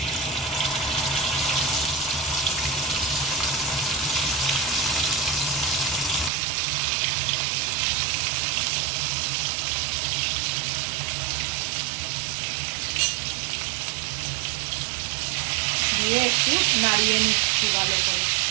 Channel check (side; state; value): left; drops out; at 6.3 s